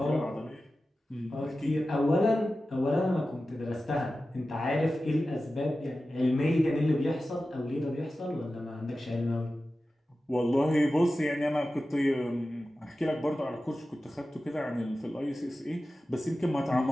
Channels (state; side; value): normal; both; correlation 0.94